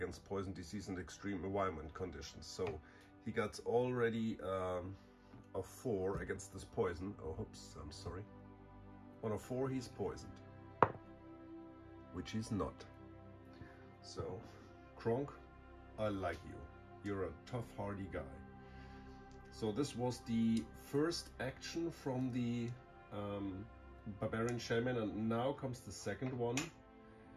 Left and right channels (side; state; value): both; identical; correlation 1.00